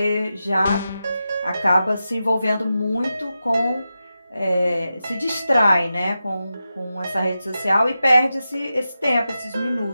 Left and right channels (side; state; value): both; inverted; correlation -0.91